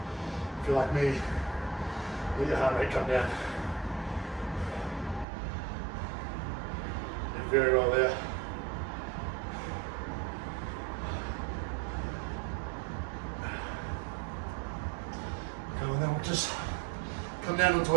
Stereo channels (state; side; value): drops out; left; at 5.2 s